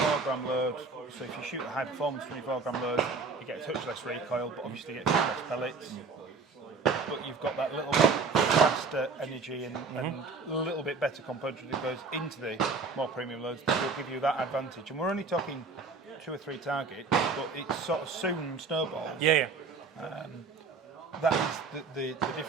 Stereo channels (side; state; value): left; quieter; 4.5 dB